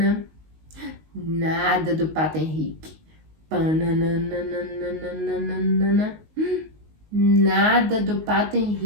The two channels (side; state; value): left; late; 19 ms